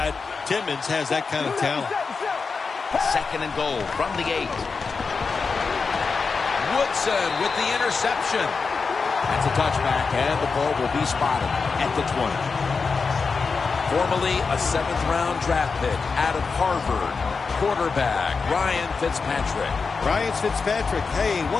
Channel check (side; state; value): right; quieter; 4.8 dB